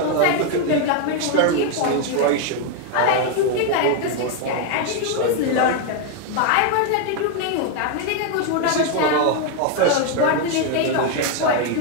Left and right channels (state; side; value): different; both; correlation 0.01